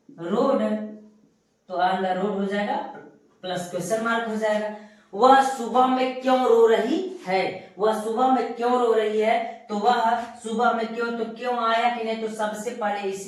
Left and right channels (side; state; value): both; identical; correlation 1.00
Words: रोड, तो ऑन द रोड हो जाएगा, प्लस क्वेश्चन मार्क हो जाएगा। वह सुबह में क्यों रो रही है, वह सुबह में क्यों रो रही है, तो वह सुबह में क्यों, तो क्यों आया कि नहीं, तो सबसे पहले